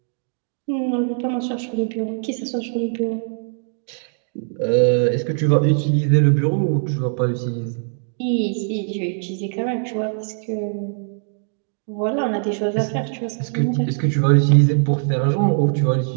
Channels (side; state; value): left; silent; digital silence